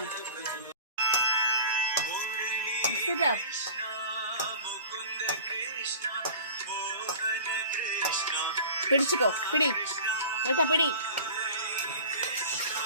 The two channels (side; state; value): both; inverted; correlation -0.40